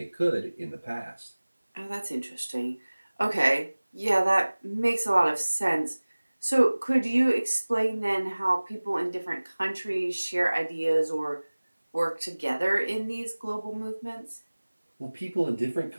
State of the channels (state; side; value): inverted; both; correlation -1.00